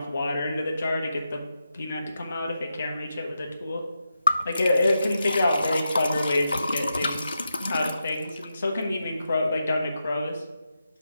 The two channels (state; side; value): inverted; both; correlation -0.87